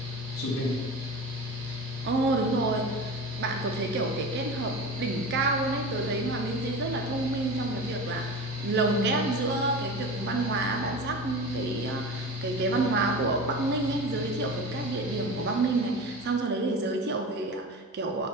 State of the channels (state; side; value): normal; both; correlation 0.31